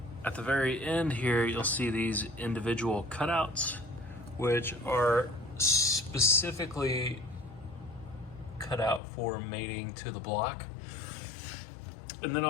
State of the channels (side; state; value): right; drops out; at 9.0 s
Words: at the very end here, you'll see these individual cutouts, which are specifically cut out for mating to the block. And then